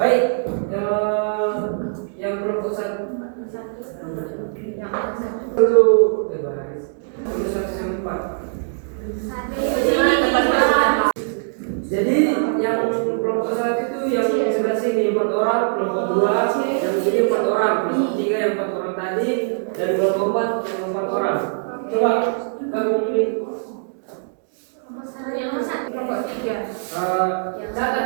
yang kelompok 1 itu terus 1 sampai 4. Jadi yang kelompok 1 itu yang sebelah sini 4 orang, kelompok 2 yang ini 4 orang, kelompok 3 yang 4 orang tadi, dan kelompok 4 yang 4 orang. Coba kamu ini Kelompok 3. catat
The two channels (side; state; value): left; silent; digital silence